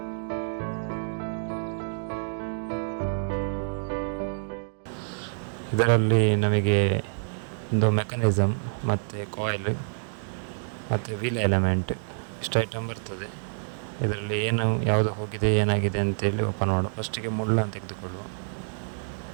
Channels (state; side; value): silent; left; digital silence